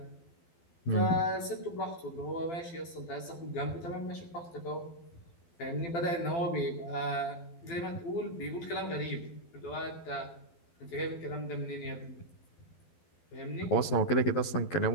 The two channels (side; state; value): right; late; 12 ms